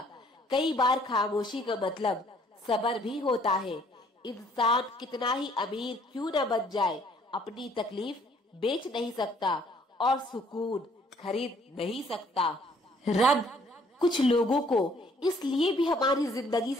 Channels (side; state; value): both; normal; correlation 0.62